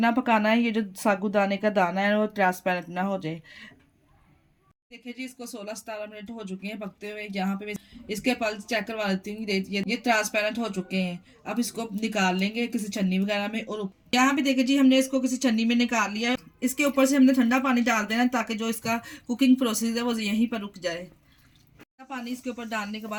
पकाना है ये जो साबूदाने का दाना है वो ट्रांसपेरेंट ना हो जाए। देखिए जी, इसको 16-17 मिनट हो चुके हैं पकते हुए। यहाँ पे इसके पल्स चेक करवा लेती हूँ। ये ट्रांसपेरेंट हो चुके हैं। अब इसको निकाल लेंगे किसी छन्नी वगैरह में। और यहाँ पे देखिए जी, हमने इसको किसी छन्नी में निकाल लिया है। इसके ऊपर से हमने ठंडा पानी डाल देना ताकि जो इसका कुकिंग प्रोसेस है वो यहीं पर रुक जाए। पानी इसके ऊपर डालने के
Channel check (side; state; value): both; identical; correlation 1.00